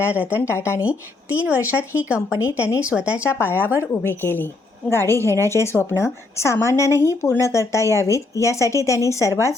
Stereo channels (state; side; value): quieter; right; 3.4 dB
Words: रतन टाटांनी 3 वर्षात ही कंपनी त्यांनी स्वतःच्या पायावर उभी केली. गाडी घेण्याचे स्वप्न सामान्यांनाही पूर्ण करता यावीत यासाठी त्यांनी सर्वात